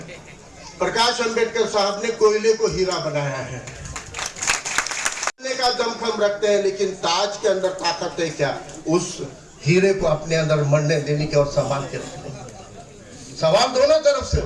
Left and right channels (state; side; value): identical; both; correlation 1.00